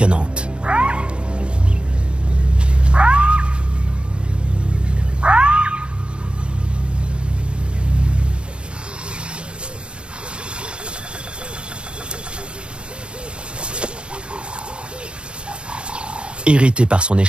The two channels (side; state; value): left; late; 0.055 ms